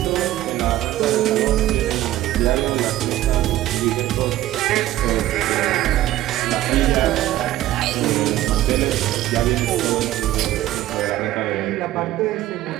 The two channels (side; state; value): left; quieter; 14.5 dB